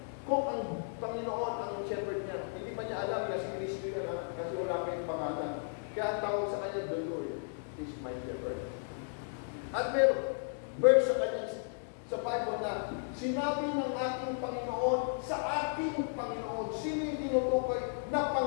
kung ang Panginoon ang shepherd niya. Hindi pa niya alam na si Kristo yun kasi wala pa yung pangalan. Kaya ang tawag sa kanya, the Lord is my shepherd. At meron verse sa kanya sa Bible na sinabi ng ating Panginoon sa ating Panginoon. Sino yung tinutukoy na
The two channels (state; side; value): silent; right; digital silence